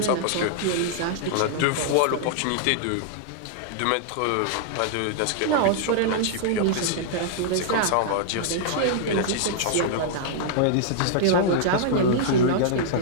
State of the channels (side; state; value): both; different; correlation -0.01